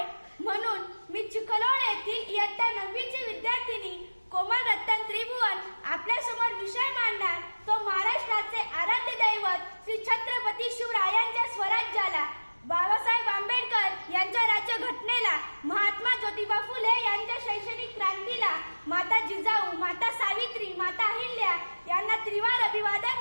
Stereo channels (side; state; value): both; inverted; correlation -1.00